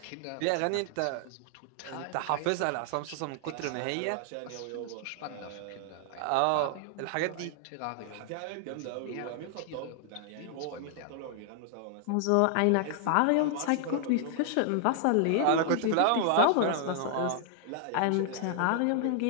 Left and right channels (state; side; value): different; both; correlation 0.00